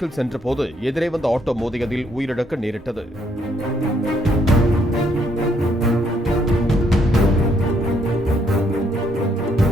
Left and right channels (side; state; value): both; normal; correlation 0.71